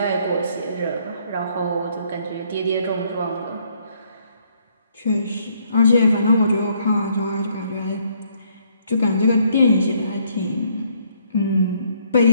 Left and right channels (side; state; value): both; inverted; correlation -0.68